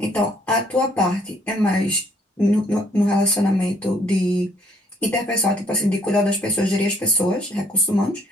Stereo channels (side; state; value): both; normal; correlation 0.64